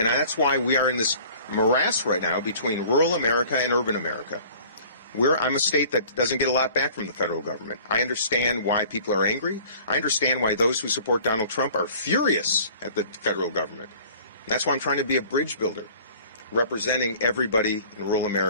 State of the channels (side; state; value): both; inverted; correlation -0.49